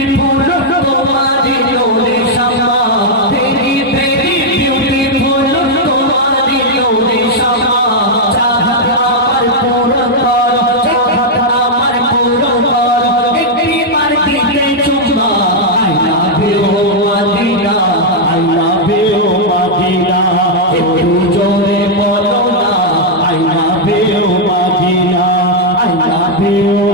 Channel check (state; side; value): normal; both; correlation -0.03